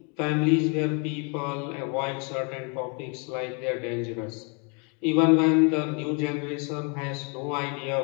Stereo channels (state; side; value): quieter; right; 35.0 dB